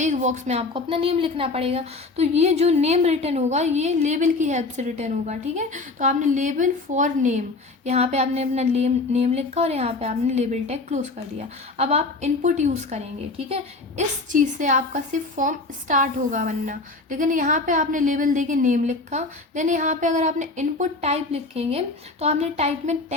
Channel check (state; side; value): quieter; right; 3.5 dB